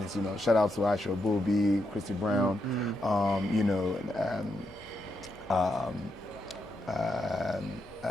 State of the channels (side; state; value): both; normal; correlation 0.82